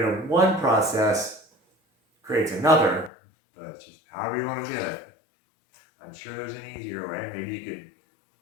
of one process creates another, but it's just however you want to do it. I'm sure there's an easier way. Maybe you could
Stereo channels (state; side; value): drops out; right; at 3.1 s